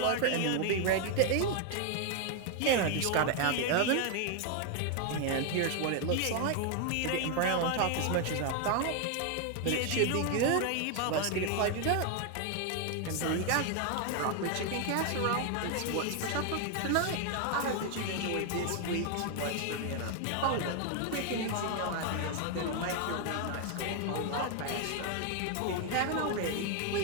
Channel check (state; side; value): different; both; correlation 0.01